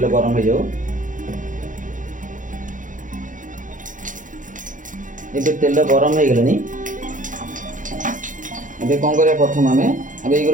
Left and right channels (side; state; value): left; late; 0.38 ms